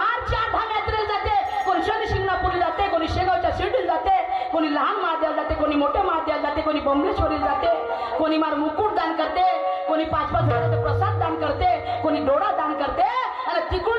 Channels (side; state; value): both; identical; correlation 1.00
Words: 8 यात्रेला जाते, कोणी शनी शिंगणापूरला जाते, कोणी शेगावच्या शिर्डीला जाते, कोणी लहान महादेवाला जाते, कोणी मोठ्या महादेवाला जाते, कोणी बंबलेश्वरीला जाते, कोणी मार मुकुट दान करते, कोणी 5-5 हजाराचा प्रसाद दान करते, कोणी डोळा दान करते. आणि